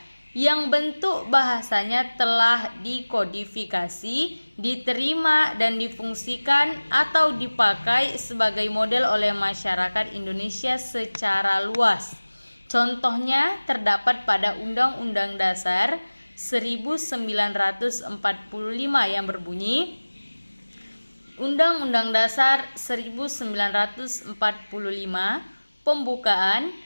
yang bentuk bahasanya telah dikodifikasi, diterima, dan difungsikan atau dipakai sebagai model oleh masyarakat Indonesia secara luas. Contohnya terdapat pada Undang-Undang Dasar 1945 yang berbunyi, Undang-Undang Dasar 1945 pembukaan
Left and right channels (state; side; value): inverted; both; correlation -1.00